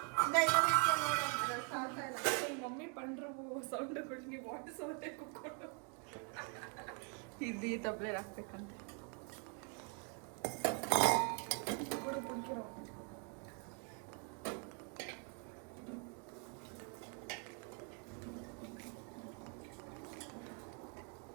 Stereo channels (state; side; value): quieter; left; 39.5 dB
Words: ಮಮ್ಮಿ ಪಂಡ್ರು ಸೌಂಡ್ಗಳು ನೀವು ವಾಟರ್ ಸೌಂಡೇ ಕುಕ್ಕೊಂಡು ಇದು ಈ ತಪ್ಪಲೆ ಹಾಕ್ಬೇಕಂತೆ.